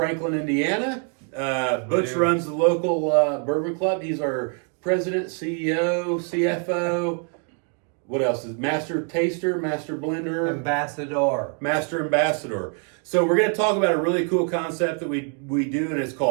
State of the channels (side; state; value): left; quieter; 39.9 dB